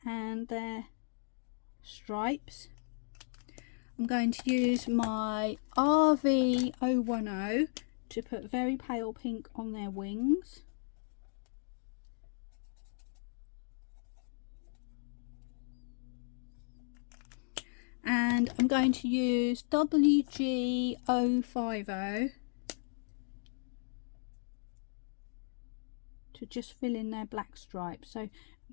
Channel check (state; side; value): silent; right; digital silence